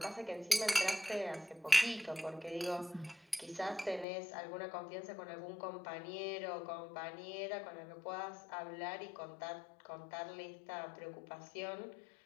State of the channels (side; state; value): right; drops out; at 4.0 s